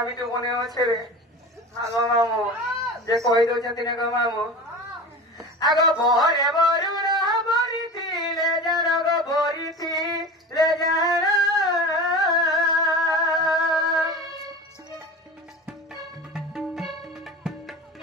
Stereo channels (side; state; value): both; normal; correlation 0.32